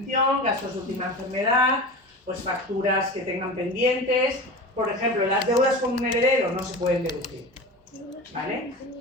gastos de última enfermedad, pues facturas que tengan pendientes, por ejemplo, las deudas con un heredero no se pueden deducir. ¿Vale?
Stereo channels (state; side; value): normal; both; correlation 0.31